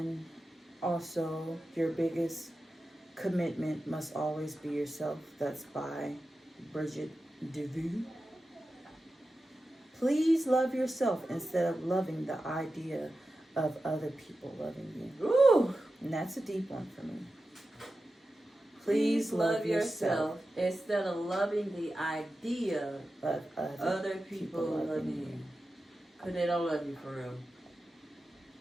also, your biggest commitment must always be yourself. That's by Bridget DeVue. Please love yourself instead of loving the idea of other people loving you. Ooh. And that's a deep one for me. Please love yourself instead of loving the idea of other people loving you. Because they don't love you for real.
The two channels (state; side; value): normal; both; correlation 0.92